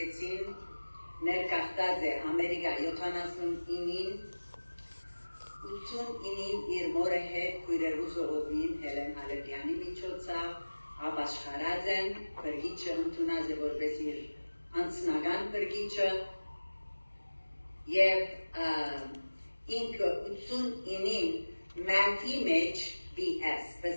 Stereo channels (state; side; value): inverted; both; correlation -1.00